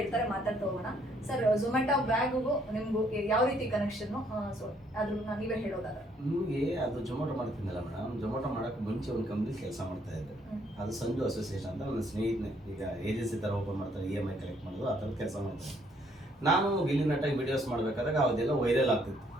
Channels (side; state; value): both; normal; correlation 0.67